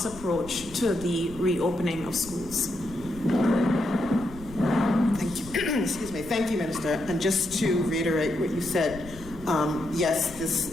approach to the reopening of schools. Thank you. Excuse me. Thank you, Minister. And just to reiterate what you said, yes, this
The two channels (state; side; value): noise; left; rumble, 15 dB below the sound